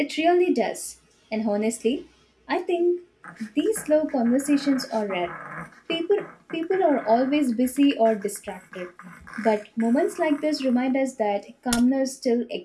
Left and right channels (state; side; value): identical; both; correlation 1.00